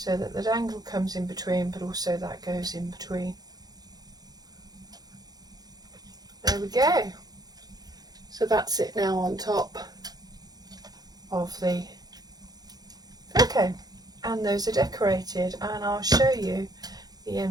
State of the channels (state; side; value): late; left; 0.19 ms